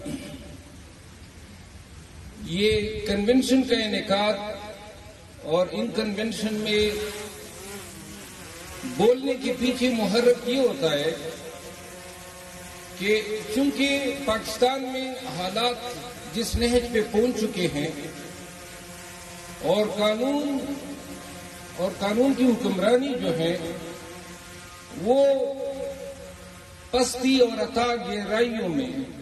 یہ کنونشن کا انعقاد اور ان کنونشن میں بولنے کے پیچھے محرک یہ ہوتا ہے کہ چونکہ پاکستان میں حالات جس نہج پہ پہنچ چکے ہیں اور قانون کی حکمرانی جو ہے وہ پستی اور عطا گہرائیوں میں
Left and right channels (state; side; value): identical; both; correlation 1.00